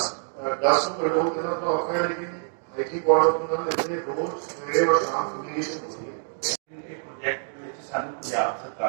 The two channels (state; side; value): silent; left; digital silence